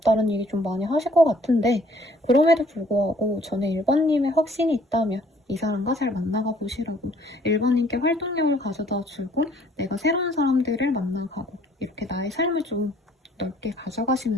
얘기 좀 많이 하실 것 같은데 그럼에도 불구하고 저는 1번님의 확신이 있다면 이 사람과 잘 만나가 보시라고 1번님께 활동량을 가져다 주고 내가 새로운 사람들을 만나가고 이렇게 나의 삶을 좀 넓게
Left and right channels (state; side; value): normal; both; correlation 0.59